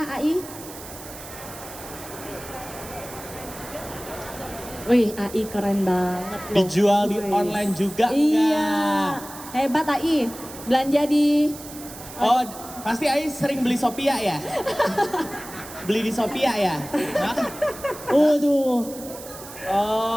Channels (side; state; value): right; noise; hiss, 14 dB below the sound